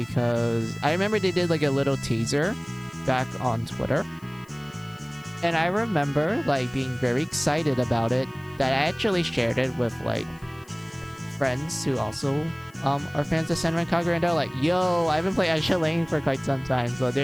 I remember they did like a little teaser back on Twitter. And I remember like being very excited about it, that I actually shared it with like friends who also are fans of Senran Kagura, and they're like, yo, I haven't played Azure Lane for quite some time. So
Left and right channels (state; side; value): noise; left; hiss, 28 dB below the sound